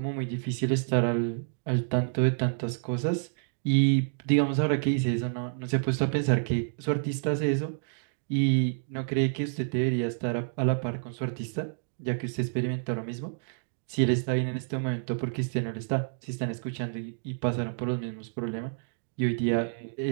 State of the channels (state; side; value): silent; left; digital silence